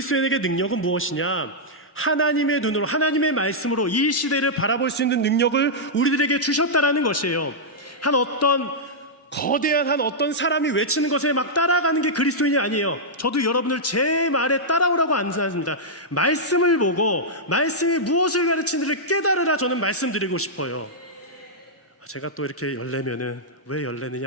능력은 무엇이냐? 하나님의 눈으로, 하나님의 말씀으로 이 시대를 바라볼 수 있는 능력을 우리들에게 주셨다라는 것이에요. 거대한 어떤 사람이 외치는 것에 막 따라가는 게 그리스도인이 아니에요. 저도 여러분을 제 말에 따라오라고 안 하십니다. 말씀을 보고 말씀이 무엇을 가르치는지를 깨달으라 저는 말씀드리고 싶어요. 제가 또 이렇게 열내면은 왜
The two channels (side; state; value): both; normal; correlation -0.08